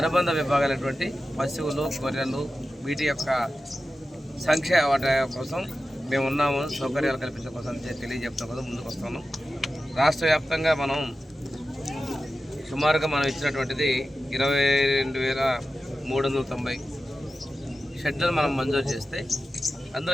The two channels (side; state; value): both; normal; correlation 0.93